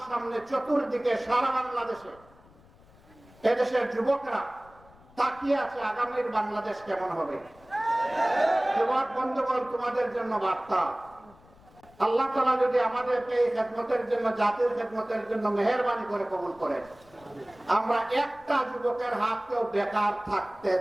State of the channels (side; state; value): left; noise; rumble, 26 dB below the sound